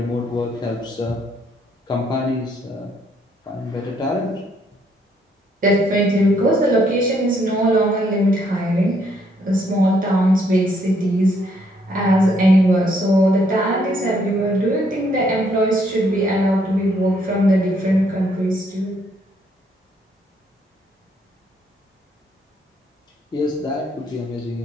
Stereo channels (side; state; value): both; normal; correlation 0.70